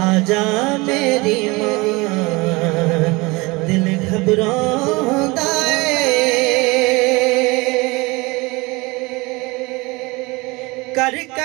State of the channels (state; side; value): quieter; left; 24.4 dB